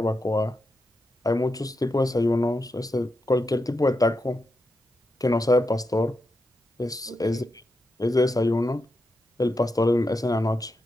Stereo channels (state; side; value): normal; both; correlation 0.86